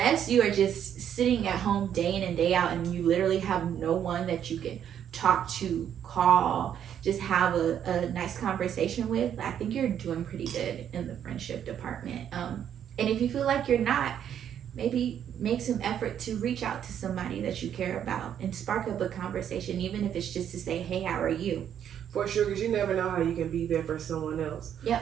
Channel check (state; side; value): quieter; left; 9.4 dB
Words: you are just sitting at home day in and day out and you literally have no one that you can talk to, call, just have a nice conversation with, I think you're doing pretty good in the friendship department. And if you feel like you're not, maybe make some effort to reach out to somebody that you care about and spark up a conversation, even if it's just to say, hey, how are you? For sure, because you never know how you can be there for someone else. Yep.